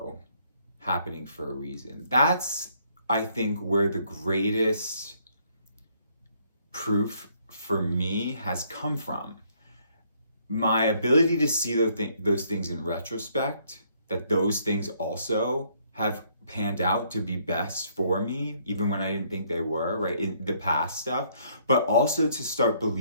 happening for a reason. That's, I think, where the greatest proof for me has come from. My ability to see those things in retrospect, that those things also have panned out to be best for me, even when I didn't think they were, right, in the past stuff, but also to start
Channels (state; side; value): inverted; both; correlation -0.67